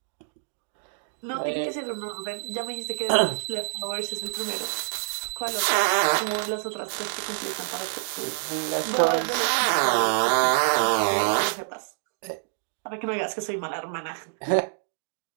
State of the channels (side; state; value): left; silent; digital silence